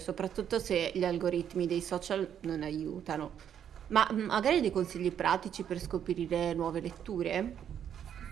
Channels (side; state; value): left; quieter; 9.2 dB